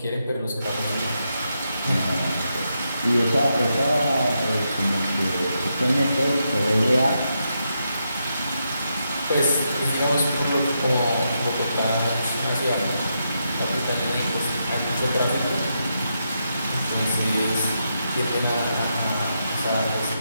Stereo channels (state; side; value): inverted; both; correlation -0.83